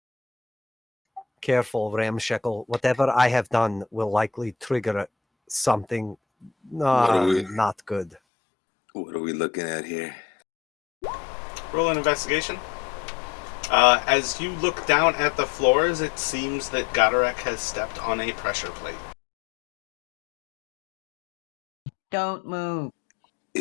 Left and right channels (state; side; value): drops out; right; at 8.2 s